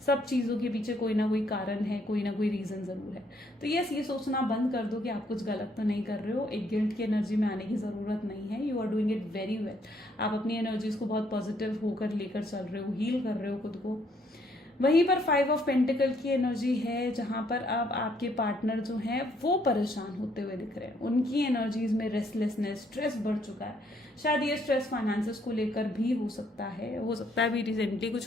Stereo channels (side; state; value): both; normal; correlation 0.69